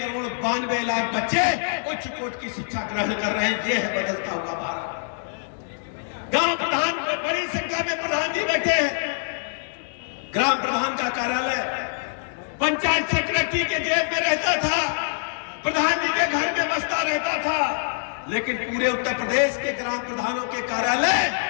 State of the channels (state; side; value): silent; right; digital silence